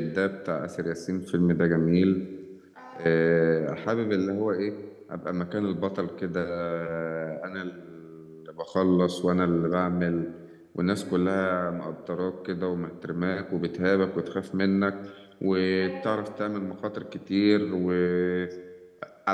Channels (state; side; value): identical; both; correlation 1.00